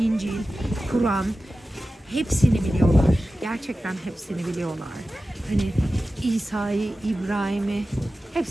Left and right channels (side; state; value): both; normal; correlation 0.94